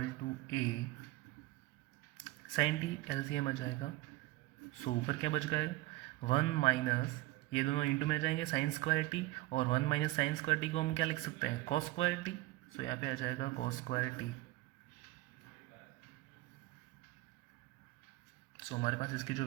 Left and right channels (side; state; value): left; quieter; 18.1 dB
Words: to a sin t LCM आ जाएगा। सो ऊपर क्या बच गया, 1 माइनस, ये दोनों इंटू में जाएंगे साइन स्क्वायर टी, और 1 माइनस साइन स्क्वायर टी को हम क्या लिख सकते हैं, कॉस स्क्वायर टी। सो यहाँ पे आ जाएगा कॉस स्क्वायर टी। सो हमारे पास इसकी जो